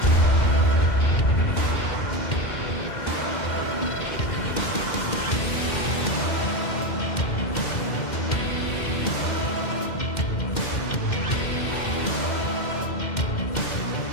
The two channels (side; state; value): right; late; 2.1 ms